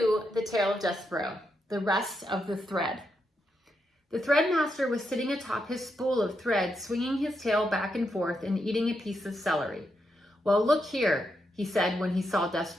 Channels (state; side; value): normal; both; correlation 0.83